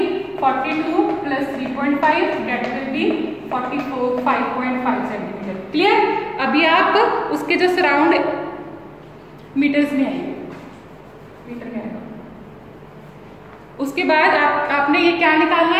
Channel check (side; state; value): both; identical; correlation 1.00